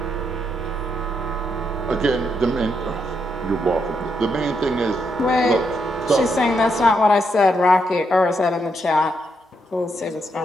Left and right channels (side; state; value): both; normal; correlation 0.79